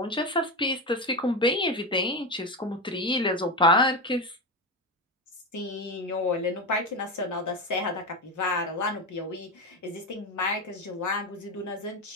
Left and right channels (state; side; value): normal; both; correlation 0.17